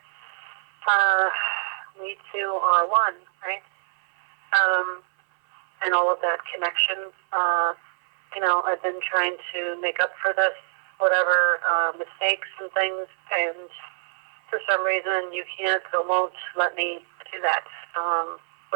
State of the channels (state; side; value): silent; left; 62 dB below the other